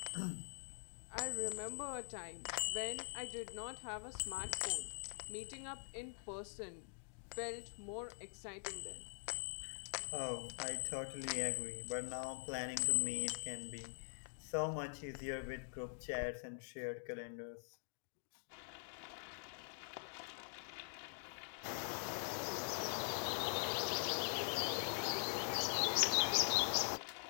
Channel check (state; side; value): silent; right; digital silence